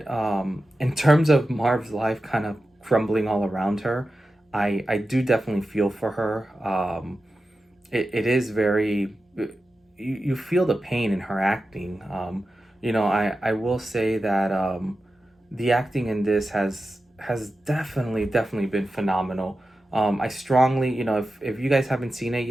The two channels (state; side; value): normal; both; correlation 0.92